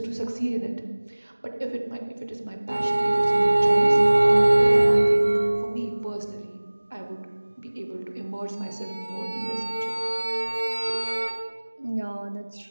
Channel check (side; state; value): both; inverted; correlation -1.00